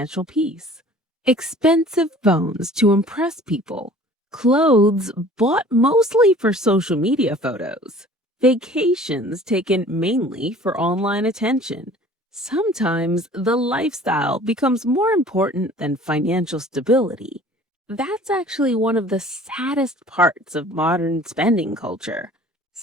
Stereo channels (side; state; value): both; normal; correlation 0.48